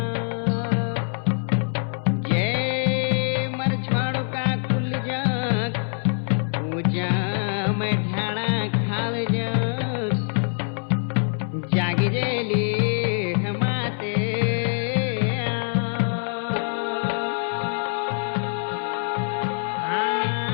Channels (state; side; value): silent; right; 59 dB below the other